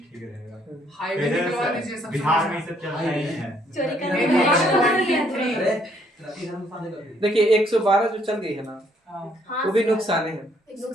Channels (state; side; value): normal; both; correlation 0.67